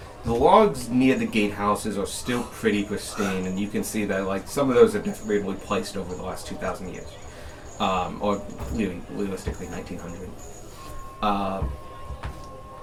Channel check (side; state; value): both; identical; correlation 1.00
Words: The logs near the gatehouses are still pretty pristine, and you can see that some of those have definitely been replaced over the last 2,000 years, or realistically 1900.